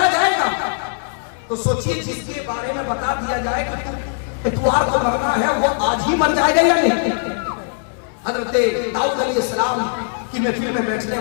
जाएगा। तो सोचिए, जिसके बारे में बता दिया जाए कि इतवार को मरना है, वो आज ही मर जाएगा या नहीं? हज़रत दाऊद अलैहिस्सलाम की महफिल में बैठने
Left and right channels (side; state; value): right; silent; digital silence